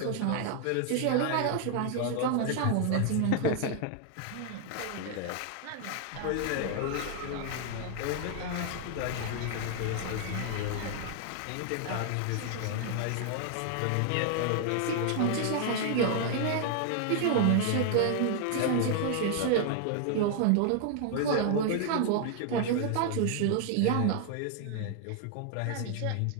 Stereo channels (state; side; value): different; both; correlation 0.00